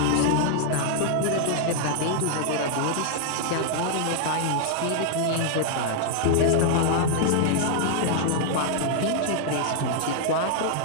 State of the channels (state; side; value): different; both; correlation 0.00